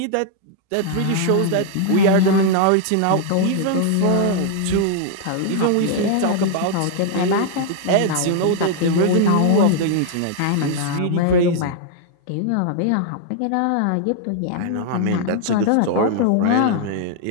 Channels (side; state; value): both; different; correlation 0.00